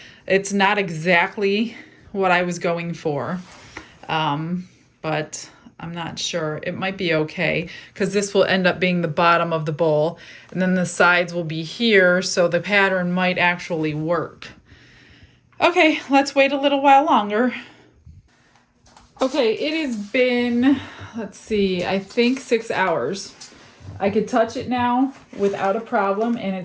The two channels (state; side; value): identical; both; correlation 1.00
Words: It's not exactly what I was going for, but I'm not sure. It might be okay because this will end up being the bottom of the bowl, and then the sides will be here, so the pattern might actually work. Okay, let's wait a little while longer. Okay, it has been, let's see, I think 6 hours. I could touch it now without a problem, and